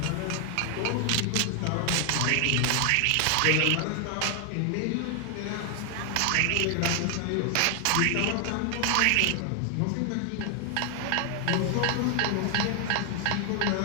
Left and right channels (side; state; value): both; different; correlation 0.00